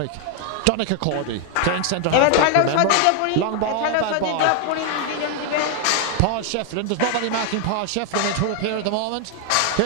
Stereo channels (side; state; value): both; different; correlation 0.00